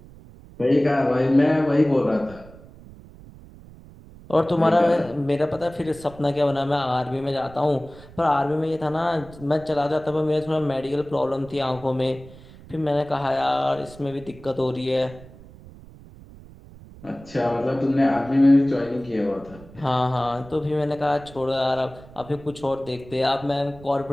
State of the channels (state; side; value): noise; right; rumble, 20 dB below the sound